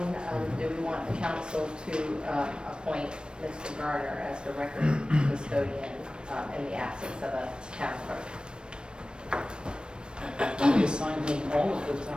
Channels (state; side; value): late; left; 0.053 ms